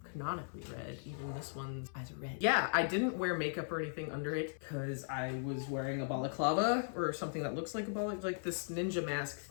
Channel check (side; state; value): right; silent; 52 dB below the other